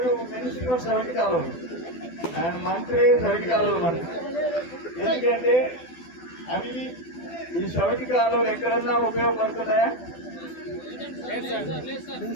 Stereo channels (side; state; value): right; late; 12 ms